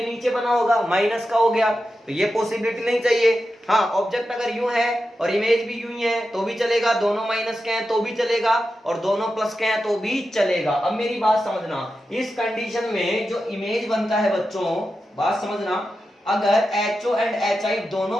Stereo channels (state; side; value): normal; both; correlation 0.90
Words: नीचे बना होगा माइनस का हो गया, तो ये पॉसिबिलिटी नहीं चाहिए। हाँ, ऑब्जेक्ट अगर यूं है और इमेज भी यूं ही है तो भी चलेगा, दोनों माइनस के हैं तो भी चलेगा और दोनों प्लस के हैं तो भी चलेगा। अब मेरी बात समझना, इस कंडीशन में जो इमेज बनता है बच्चों, बात समझना, अगर HO एंड HI दोनों